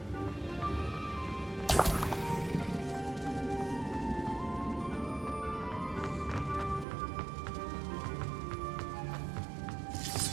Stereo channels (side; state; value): left; drops out; at 6.9 s